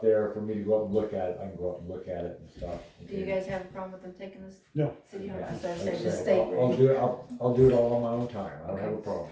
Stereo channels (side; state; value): both; identical; correlation 1.00